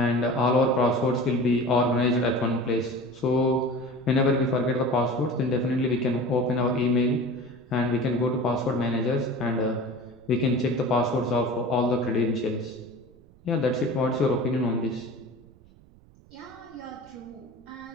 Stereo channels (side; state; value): right; noise; rumble, 26 dB below the sound